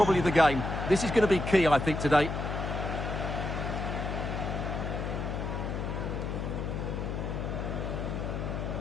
the game. This is going to be key, I think, today.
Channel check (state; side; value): noise; left; hum, 3 dB below the sound